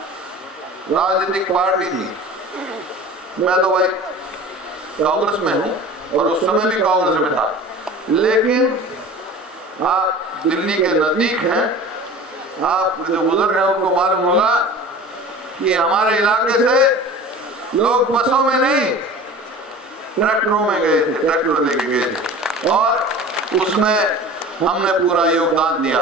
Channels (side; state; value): both; normal; correlation 0.39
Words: राजनीतिक पार्टी थी। मैं तो भाई कांग्रेस में हूं और उस समय भी कांग्रेस में था, लेकिन आप दिल्ली के नजदीक हैं, आप जो बुजुर्ग हैं उनको मालूम होगा कि हमारे इलाके से लोग बसों में नहीं ट्रैक्टरों में गए थे, ट्रैक्टर लेके गए थे और उसमें हमने पूरा योगदान